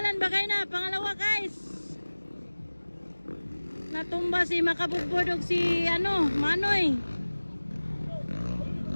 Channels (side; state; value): both; inverted; correlation -1.00